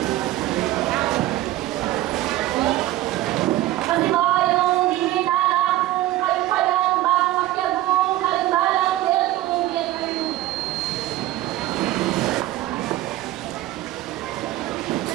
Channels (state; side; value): quieter; left; 15.4 dB